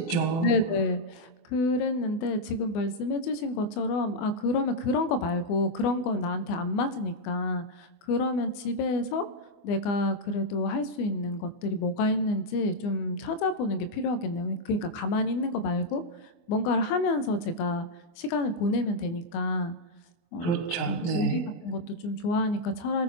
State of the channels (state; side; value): late; right; 24 ms